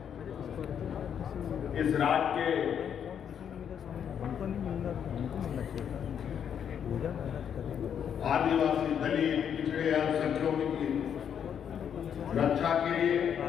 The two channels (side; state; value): right; quieter; 8.4 dB